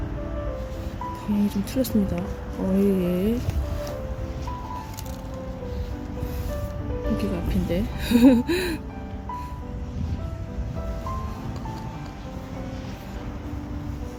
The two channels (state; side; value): identical; both; correlation 1.00